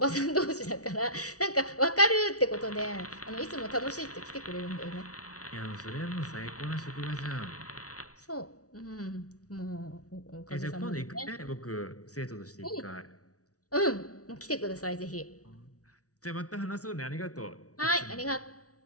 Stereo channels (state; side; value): late; right; 0.67 ms